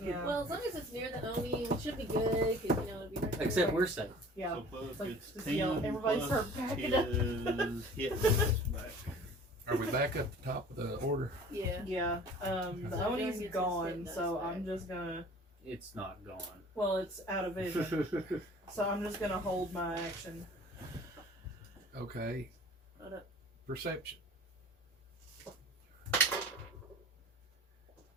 Yeah. Well, as long as it's near the Oni, it should be good, because, it'll be right there. Except we're safe. Yeah. So Buzz Like, gets just 10 yell, everybody plus start backing his up. hit dice back. Are we back at the top of the order? Yeah. Yeah. The So Oni's Jordan gets gone, his so hit dice I'm just gonna. It's not gone. Well, it's out of vision, so I'm just gonna hold my action. Okay. Hold up. Perception.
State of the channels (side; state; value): both; normal; correlation 0.46